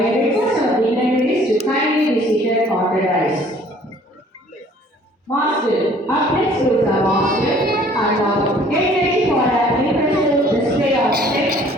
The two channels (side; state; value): both; normal; correlation 0.55